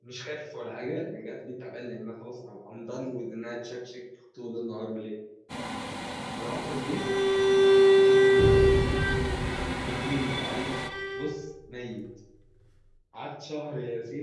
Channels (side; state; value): both; identical; correlation 1.00